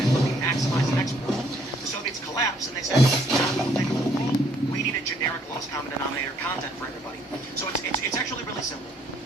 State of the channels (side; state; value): both; normal; correlation 0.65